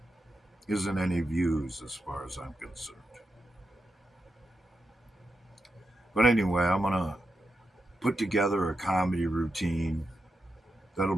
isn't any views as far as I'm concerned. But anyway, I'm gonna put together a comedy routine that'll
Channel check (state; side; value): normal; both; correlation 0.87